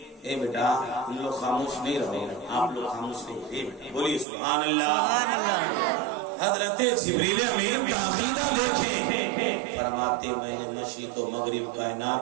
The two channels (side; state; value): left; drops out; at 4.2 s